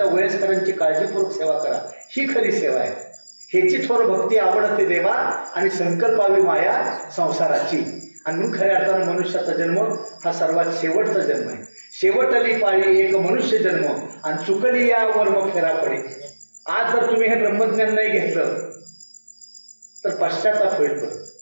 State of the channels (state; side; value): inverted; both; correlation -1.00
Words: वयस्करांची काळजीपूर्वक सेवा करा. ही खरी सेवा आहे. ह्याची थोर भक्ती आवडते देवा आणि संकल्पावी माया संसाराची. आणि म्हणून खऱ्या अर्थानं मनुष्याचा जन्म हा सर्वात शेवटचा जन्म आहे. शेवटली पाळी एक मनुष्य जन्म आणि चुकली या वर्म फेरा पडे. आज जर तुम्ही हे ब्रह्मज्ञान नाही घेतलं तर पश्चाताप होईल परत.